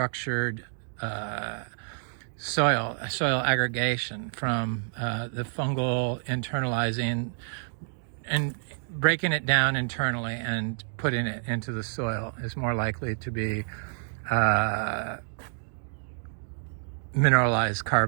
soil aggregation from the fungal internalizing and breaking it down internally and putting it into the soil is more likely to be mineralized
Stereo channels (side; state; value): left; silent; digital silence